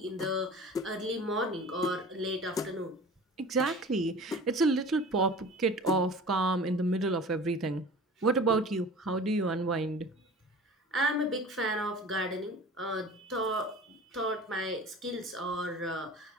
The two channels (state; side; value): normal; both; correlation 0.40